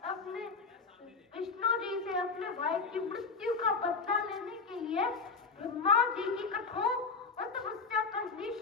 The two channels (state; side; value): quieter; right; 4.7 dB